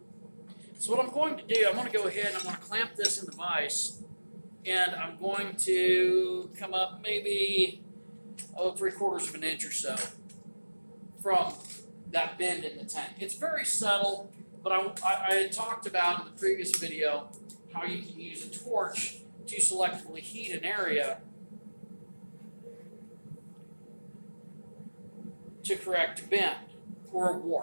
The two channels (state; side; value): inverted; both; correlation -1.00